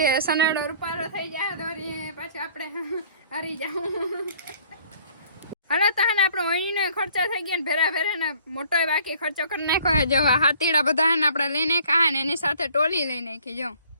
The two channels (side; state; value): both; inverted; correlation -0.57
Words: સનેડો રૂપારો થઈ જાય તો પાછું આપણે હારી જાવ. હાલો તો હે ને આપણો અહીંનો ખર્ચો થઈ ગયો ને ભેરા ભેરા ને મોટો બાકી ખર્ચો કરી નાખ્યો. જો હાથીડા બધા હે ને આપણે લઈને ખાય ને એની સાથે ટોલી લઈ નાખી. જો